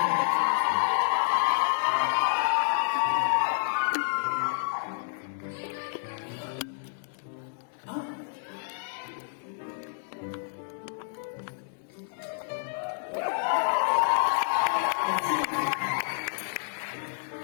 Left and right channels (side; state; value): right; silent; 58 dB below the other